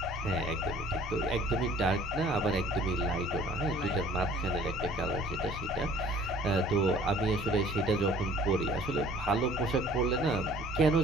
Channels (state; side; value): normal; both; correlation 0.53